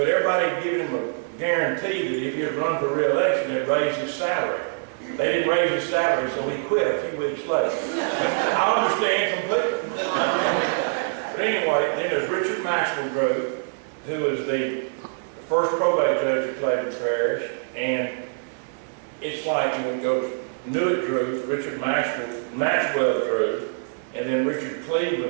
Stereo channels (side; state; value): left; silent; digital silence